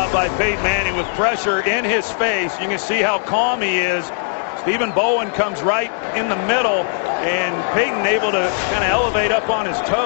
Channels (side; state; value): right; silent; 67 dB below the other